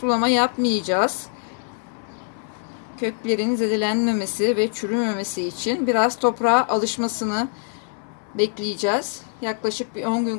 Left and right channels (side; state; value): right; silent; digital silence